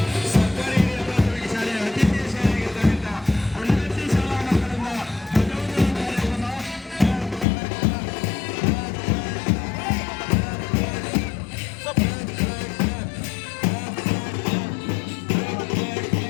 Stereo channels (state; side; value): drops out; right; at 7.5 s